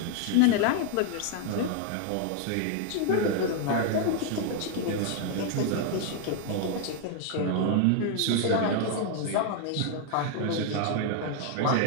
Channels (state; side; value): different; both; correlation 0.00